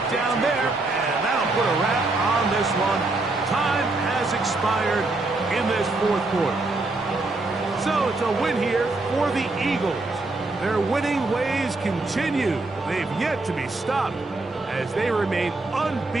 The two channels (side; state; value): left; quieter; 3.2 dB